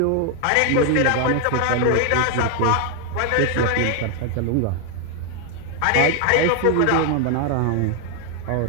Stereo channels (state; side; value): different; both; correlation 0.01